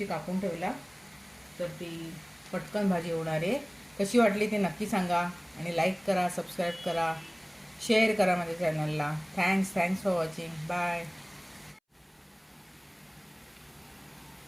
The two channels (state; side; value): identical; both; correlation 1.00